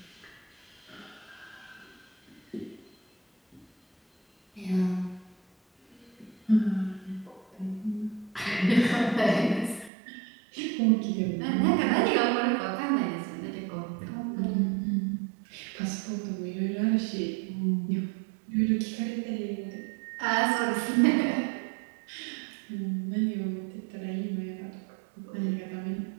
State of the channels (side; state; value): left; drops out; at 9.9 s